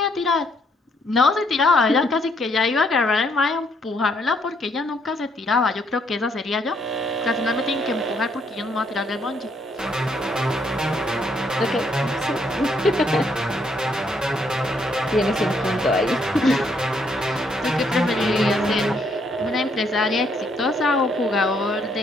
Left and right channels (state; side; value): normal; both; correlation 0.71